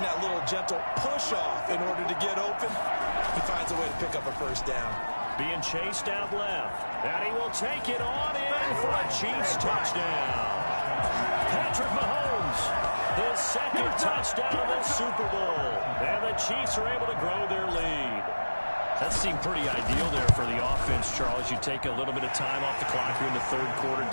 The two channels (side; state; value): both; inverted; correlation -1.00